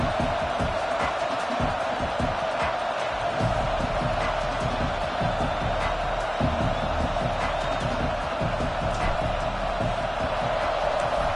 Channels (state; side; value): identical; both; correlation 1.00